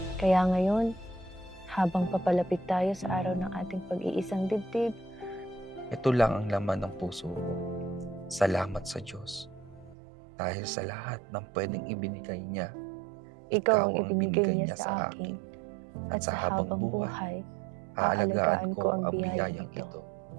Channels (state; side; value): drops out; left; at 10.0 s